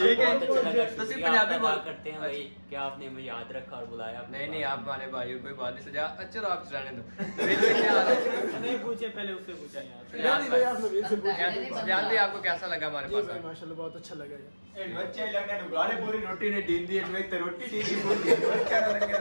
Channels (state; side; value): inverted; both; correlation -1.00